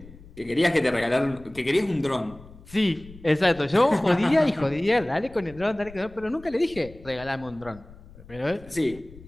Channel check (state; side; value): noise; left; rumble, 20 dB below the sound